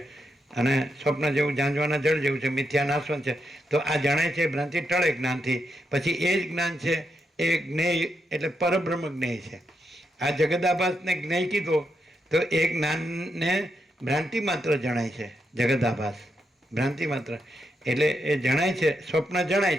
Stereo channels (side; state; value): both; normal; correlation 0.83